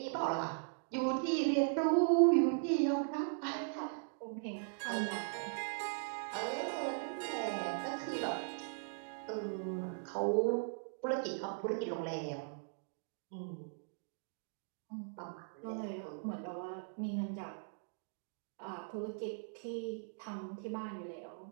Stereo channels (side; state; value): left; silent; digital silence